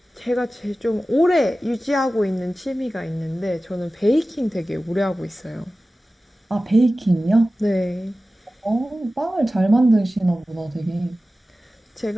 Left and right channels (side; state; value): both; normal; correlation 0.96